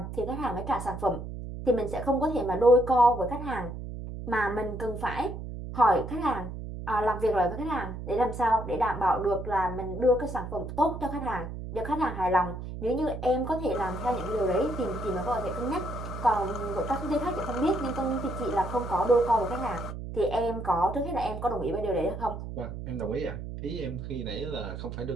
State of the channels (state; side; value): noise; right; hum, 8 dB below the sound